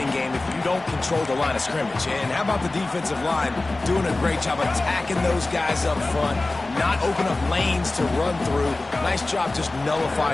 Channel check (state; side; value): quieter; right; 3.0 dB